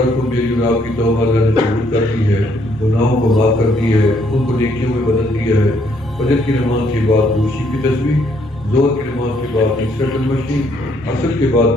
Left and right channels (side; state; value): both; normal; correlation 0.69